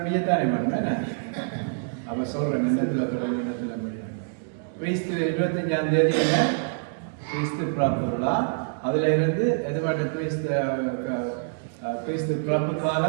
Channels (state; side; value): silent; left; digital silence